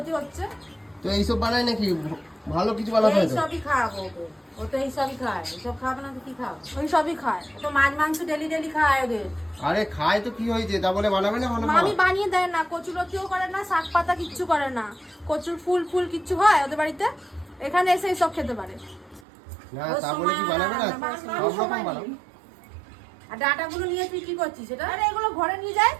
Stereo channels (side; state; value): left; drops out; at 19.2 s